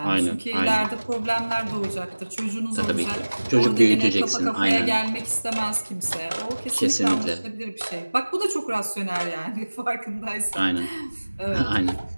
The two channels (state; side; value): inverted; both; correlation -1.00